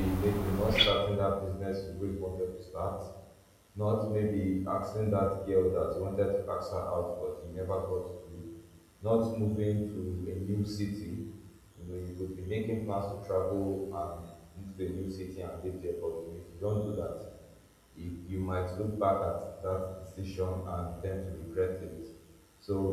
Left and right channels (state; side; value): identical; both; correlation 1.00